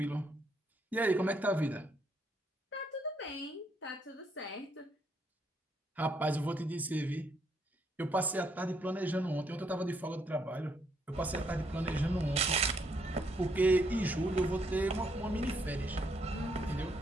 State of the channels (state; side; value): normal; both; correlation 0.73